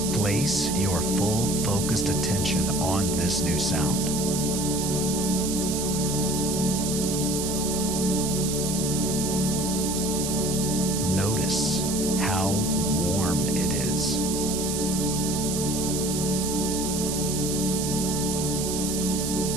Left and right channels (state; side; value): noise; right; hiss, 3 dB below the sound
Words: Place your full focused attention on this new sound. Notice how warm it is.